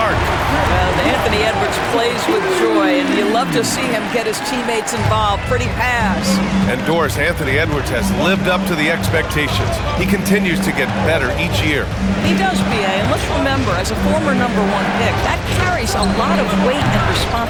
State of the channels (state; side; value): identical; both; correlation 1.00